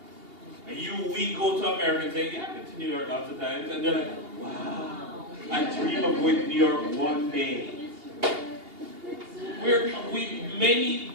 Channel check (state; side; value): late; left; 2.8 ms